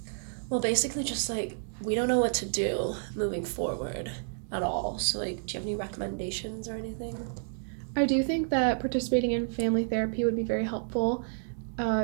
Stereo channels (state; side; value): silent; left; digital silence